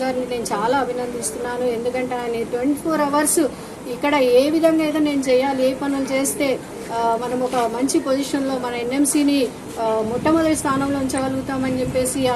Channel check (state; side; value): identical; both; correlation 1.00